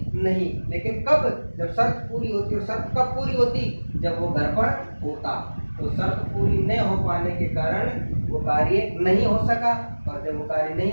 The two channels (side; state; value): both; inverted; correlation -1.00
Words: नहीं। लेकिन कब, जब शर्त पूरी होती। और शर्त कब पूरी होती, जब वो घर पर होता। तो शर्त पूरी नहीं हो पाने के कारण वो कार्य नहीं हो सका, और जब वो कार्य नहीं